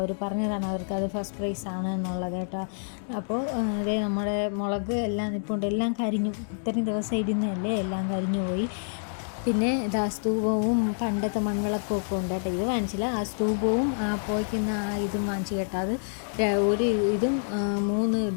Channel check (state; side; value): silent; right; digital silence